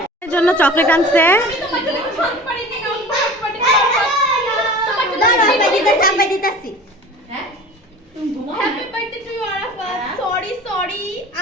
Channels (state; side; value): normal; both; correlation 0.40